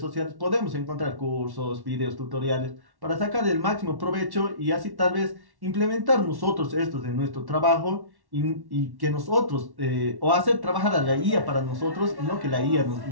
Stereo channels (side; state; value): left; late; 1.1 ms